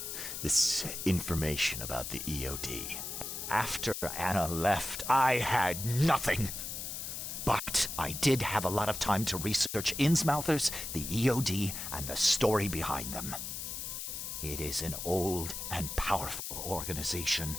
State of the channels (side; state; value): left; noise; hiss, 6 dB below the sound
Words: This information about the EOD? After Anna left, I had nothing. But I did have a lot of time to research Innsmouthers, the EOD, and the story behind them. It is an old and powerful organization.